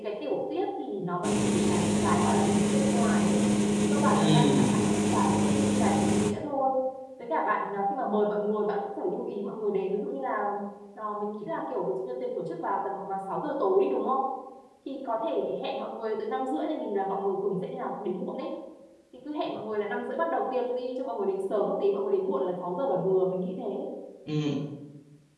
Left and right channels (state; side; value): identical; both; correlation 1.00